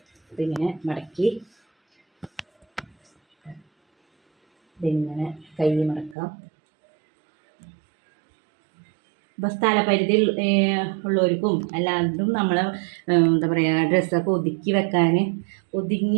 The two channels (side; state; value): left; drops out; at 6.2 s